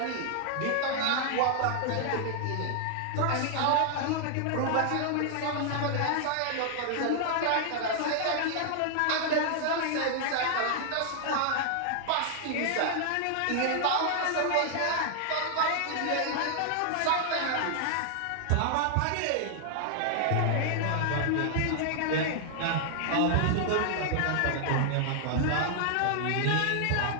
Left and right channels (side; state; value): both; different; correlation 0.00